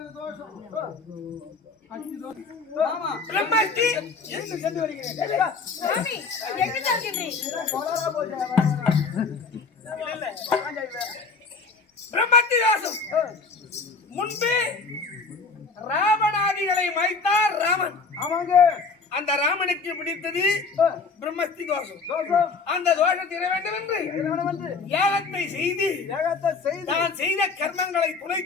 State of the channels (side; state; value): right; quieter; 4.5 dB